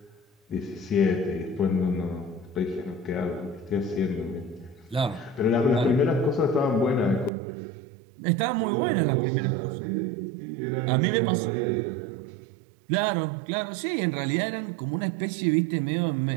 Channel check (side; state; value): left; drops out; at 7.3 s